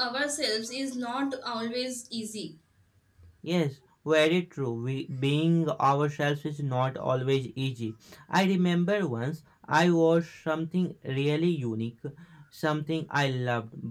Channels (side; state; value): both; identical; correlation 1.00